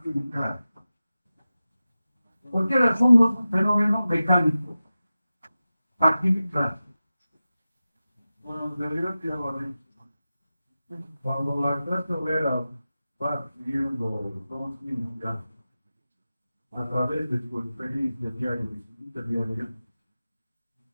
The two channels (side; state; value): both; inverted; correlation -0.94